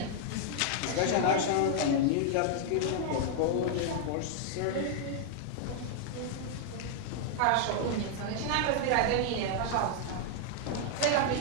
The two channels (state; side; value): different; both; correlation 0.00